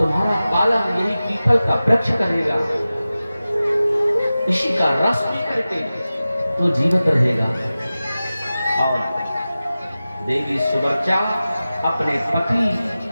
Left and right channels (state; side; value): inverted; both; correlation -0.95